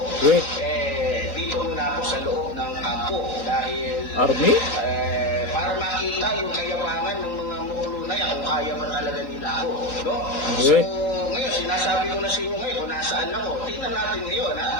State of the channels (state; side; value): late; right; 3.8 ms